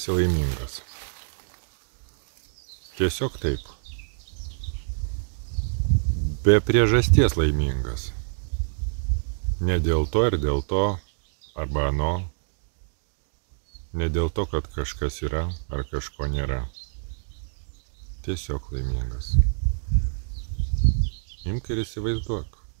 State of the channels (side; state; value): left; silent; digital silence